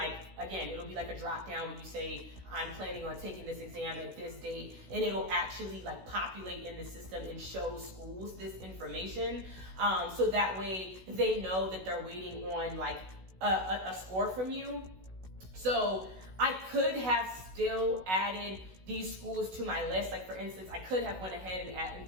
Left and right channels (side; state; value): left; late; 16 ms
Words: be like a drop down when you say I'm planning on taking this exam at this date, and it'll actually populate in the system and show schools this information, so that way they know that they're waiting on a score from you. So I could have still added these schools to my list. Like for instance, I could have went ahead